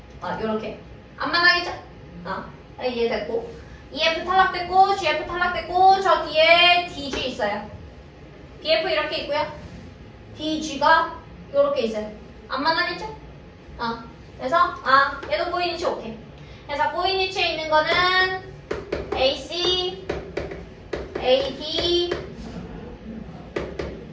요렇게. 안 만나겠죠? 이해됐고. EF 탈락됐고, GF 탈락됐고, 저 뒤에 DG 있어요. BF 이렇게 있고요. DG가 요렇게 있어요. 안 만나겠죠? 그래서, 얘도 꼬이니치 오케이. 그래서 꼬이니치에 있는 거는 AC, AD,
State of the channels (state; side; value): identical; both; correlation 1.00